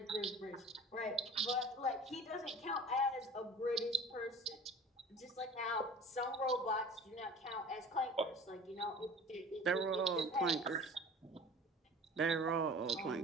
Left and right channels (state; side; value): normal; both; correlation 0.42